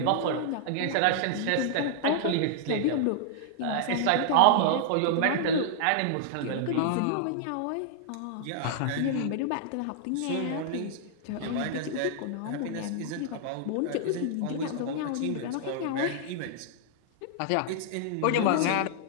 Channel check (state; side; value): different; both; correlation -0.01